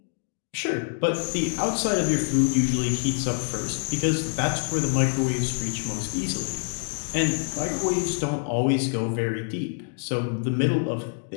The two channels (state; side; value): silent; right; 61 dB below the other